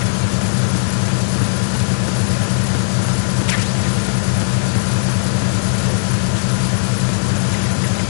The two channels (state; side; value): silent; right; 66 dB below the other